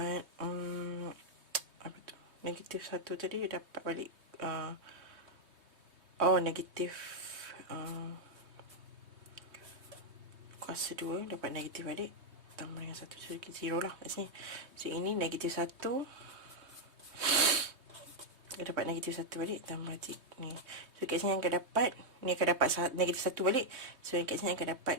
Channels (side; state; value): left; late; 3.2 ms